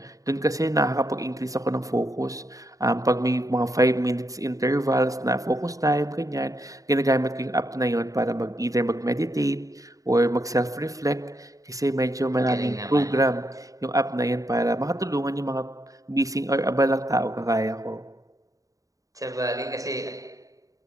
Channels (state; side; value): late; left; 0.16 ms